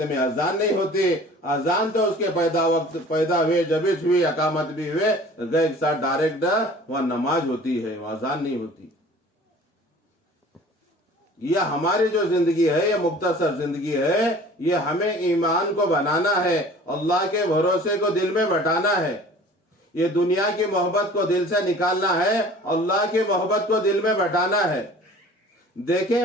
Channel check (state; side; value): normal; both; correlation 0.46